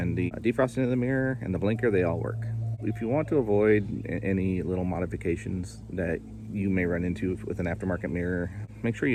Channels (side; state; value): both; identical; correlation 1.00